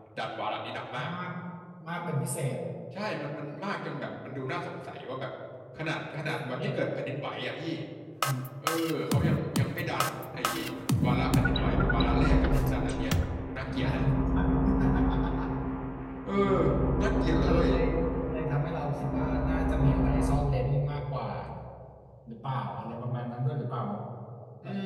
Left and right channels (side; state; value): both; identical; correlation 1.00